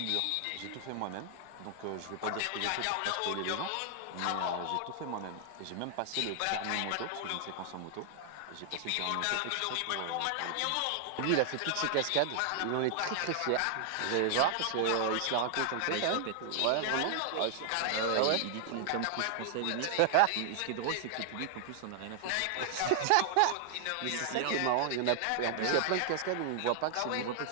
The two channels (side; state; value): both; different; correlation 0.00